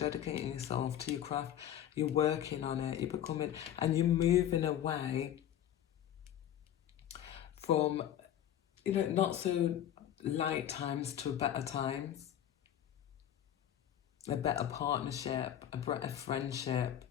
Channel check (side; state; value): right; quieter; 10.9 dB